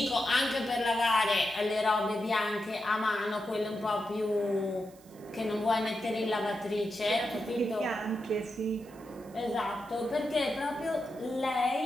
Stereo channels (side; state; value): right; noise; hiss, 26 dB below the sound